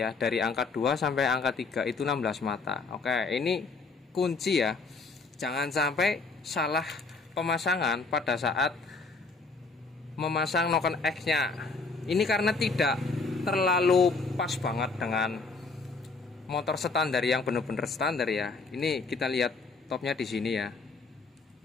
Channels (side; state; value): right; quieter; 4.0 dB